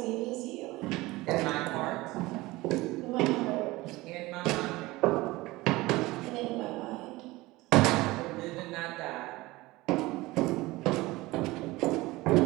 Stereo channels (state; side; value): quieter; left; 20.2 dB